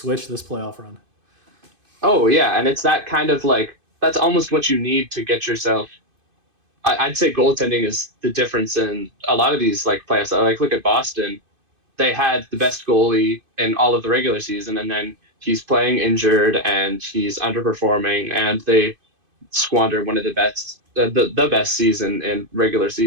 this playoff run. Oh yeah, and it's that kind of like that's almost what you need to get yourself. I'd say goaltending is the difference in a lot of these like playoffs. Like look at Boston, they had the best goalie in all of the regular season, and then he's playing injured and he's underperforming, and they squander one of the best season in regular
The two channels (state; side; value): late; left; 2.5 ms